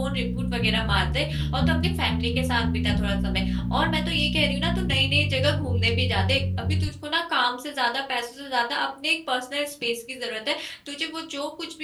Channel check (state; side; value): identical; both; correlation 1.00